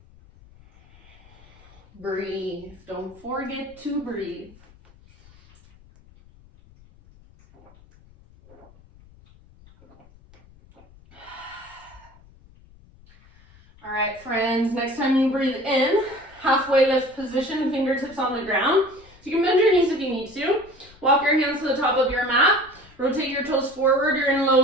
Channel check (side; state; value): left; noise; rumble, 26 dB below the sound